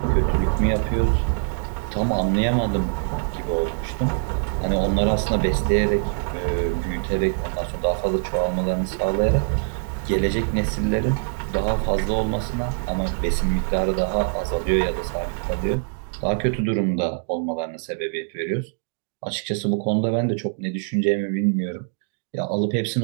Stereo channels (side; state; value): left; silent; digital silence